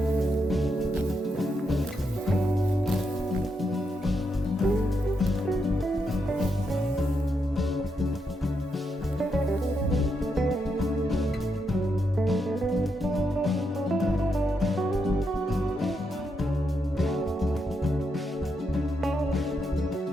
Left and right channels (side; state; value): both; normal; correlation 0.81